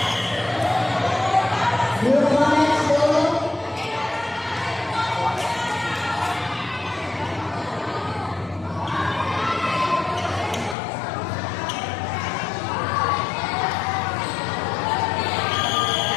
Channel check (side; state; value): right; drops out; at 10.8 s